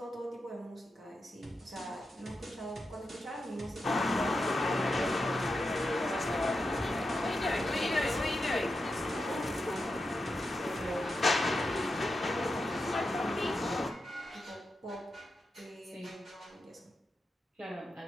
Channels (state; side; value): normal; both; correlation 0.88